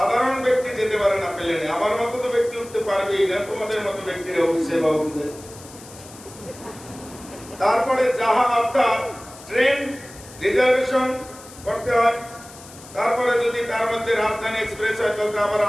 ব্যক্তি যেতে পারে না প্লেনে। আমার মতো তো ব্যক্তি উঠতে পারবেই না, তোমাদের মতো ব্যক্তিরা উঠছে বা উঠবে। তারপরে জাহাজ অর্থাৎ ট্রেন রিজার্ভেশন করতে হয়। তারপরে যদি তার মধ্যে রাজধানী এক্সপ্রেস হয় তাহলে আবার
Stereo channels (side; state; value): left; noise; hiss, 19 dB below the sound